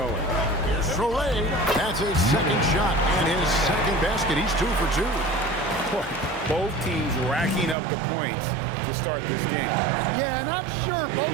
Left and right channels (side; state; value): left; drops out; at 7.8 s